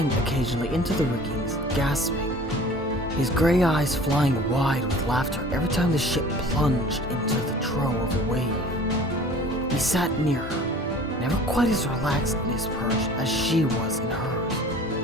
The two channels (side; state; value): both; normal; correlation 0.45